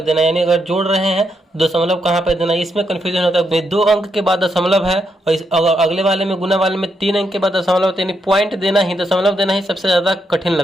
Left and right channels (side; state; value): both; normal; correlation 0.80